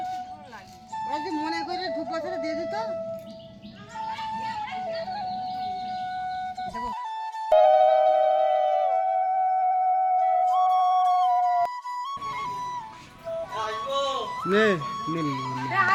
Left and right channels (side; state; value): both; identical; correlation 1.00